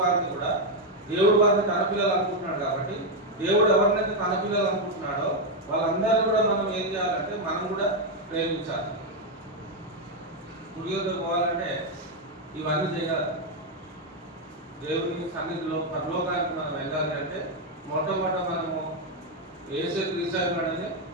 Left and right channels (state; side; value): normal; both; correlation 0.03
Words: కూడా దేవుడు వారిని తన పిల్లలు అనుకుంటున్నాడు. కాబట్టి దేవుడు ఎవరినైతే తన పిల్లలు అనుకుంటున్నాడో వాళ్ళందరూ కూడా మనం ఏం చేయాలంటే మనం కూడా ప్రేమించాలి. గుడిలోకి పోవాలంటే ఇవన్నీ చేయాలి. దేవుని సన్నిధిలో పరలోకానికి మనం వెళ్ళాలి అంటే మొట్టమొదట మనము యేసు క్రీస్తు ఉన్నాడని